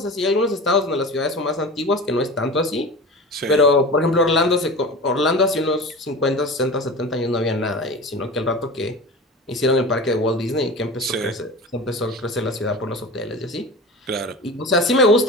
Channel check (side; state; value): both; normal; correlation 0.33